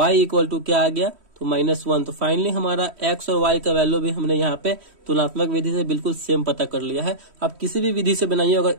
इक्वल टू क्या आ गया तो -1। तो फाइनली हमारा x और y का वैल्यू भी हमने यहाँ पे तुलनात्मक विधि से बिल्कुल सेम पता कर लिया है। आप किसी भी विधि से बनाइए, अगर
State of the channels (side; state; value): left; late; 3.1 ms